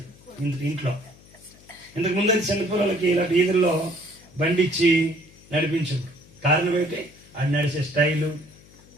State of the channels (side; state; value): left; noise; hum, 25 dB below the sound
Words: ఇంట్లో. ఇంతకు ముందు అయితే చిన్నపిల్లలకి ఇలాంటి ఈదుల్లో బండి ఇచ్చి నడిపించు. కారణం ఏంటి? ఆడి నడిచే స్టైలు,